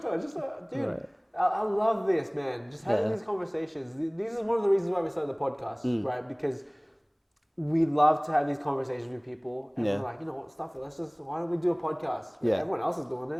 talk. Just, dude, I love this, man. Just having these conversations. These are one of the reasons why we started the podcast, right? Because we love to have these conversations with people, and we're like, you know what, stuff it. Why don't we do a podcast? Right? Everyone else is doing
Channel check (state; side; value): identical; both; correlation 1.00